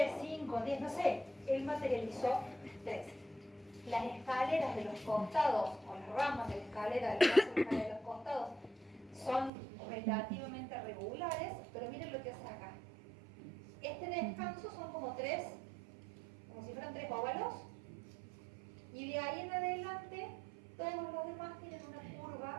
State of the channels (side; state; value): left; drops out; at 9.5 s